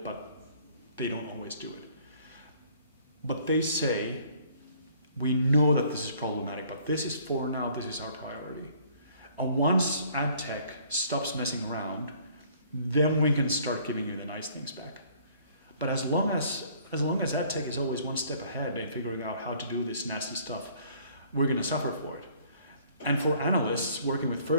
but they don't always do it. But they say, we know that this is problematic, but this is for now, this is our priority. And once AdTech stops messing around, then we can start giving you the nice things back. But as long as AdTech is always one step ahead in figuring out how to do this nasty stuff, we're going to suffer for it. And for analysts working with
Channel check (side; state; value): both; inverted; correlation -0.58